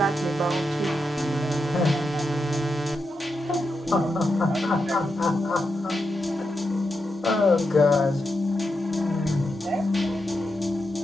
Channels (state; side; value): normal; both; correlation 0.86